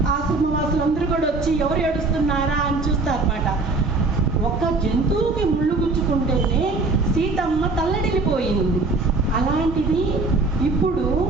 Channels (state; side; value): quieter; left; 3.5 dB